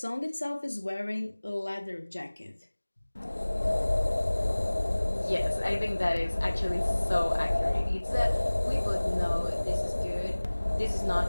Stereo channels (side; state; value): both; inverted; correlation -1.00